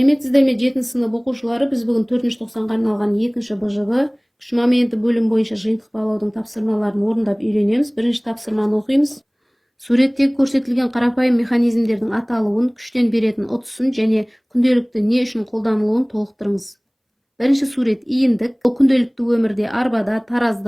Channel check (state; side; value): identical; both; correlation 1.00